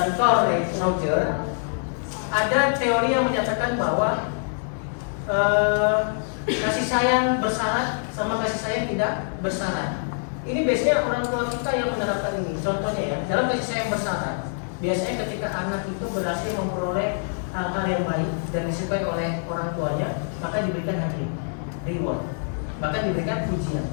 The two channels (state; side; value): silent; right; digital silence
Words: Carl Roger. Ada teori yang menyatakan bahwa kasih sayang bersyarat sama kasih sayang tidak bersyarat. Ini biasanya orang tua kita yang menerapkan ini. Contohnya ya, dalam kasih sayang bersyarat, biasanya ketika anak itu berhasil memperoleh hal-hal yang baik dan disukai oleh orang tuanya, maka diberikan hadiah, reward, bahkan diberikan pujian.